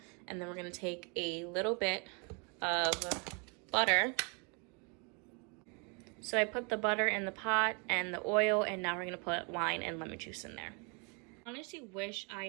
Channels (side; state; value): left; quieter; 33.9 dB